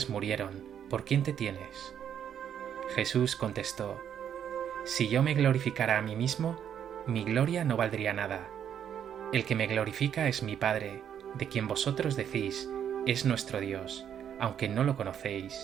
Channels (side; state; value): left; quieter; 9.1 dB